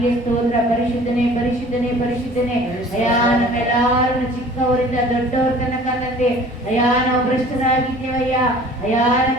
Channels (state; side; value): normal; both; correlation 0.48